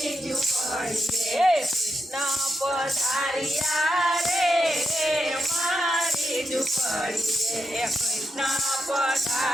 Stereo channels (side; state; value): both; normal; correlation 0.84